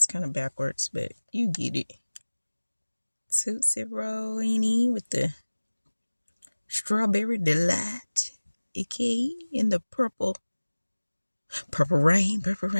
kind of backwards, but you get it. Tootsie Roll, with the strawberry delight. Okay, in the purple rain, purple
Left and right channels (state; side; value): inverted; both; correlation -1.00